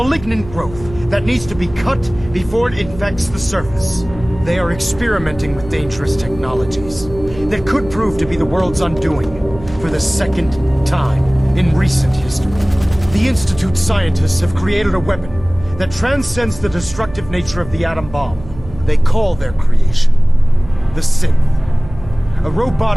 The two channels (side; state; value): right; noise; hum, 16 dB below the sound